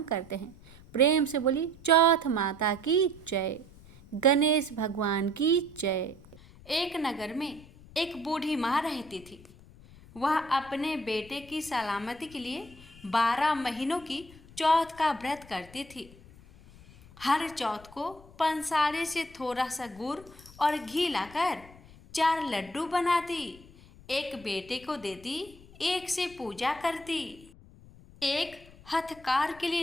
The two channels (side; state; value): left; noise; rumble, 21 dB below the sound